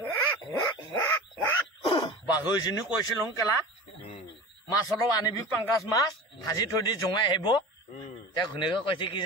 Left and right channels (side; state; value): both; normal; correlation 0.34